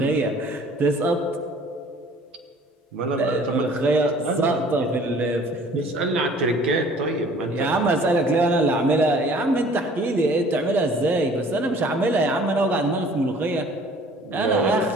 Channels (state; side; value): normal; both; correlation 0.52